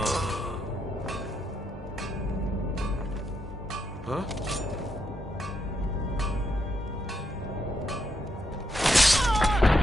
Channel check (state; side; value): normal; both; correlation 0.80